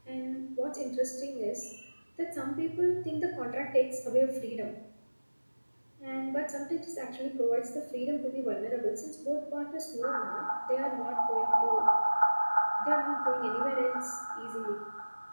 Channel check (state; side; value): inverted; both; correlation -1.00